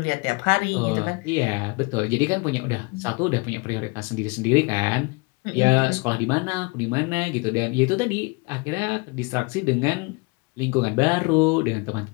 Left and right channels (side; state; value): right; quieter; 28.9 dB